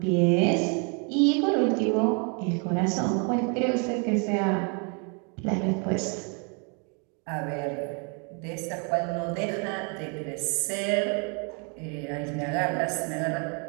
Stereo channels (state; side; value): quieter; left; 36.5 dB